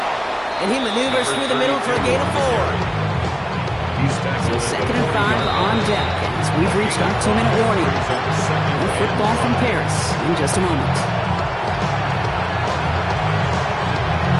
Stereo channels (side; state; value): both; identical; correlation 1.00